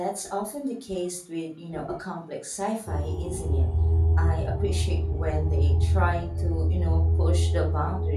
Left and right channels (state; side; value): identical; both; correlation 1.00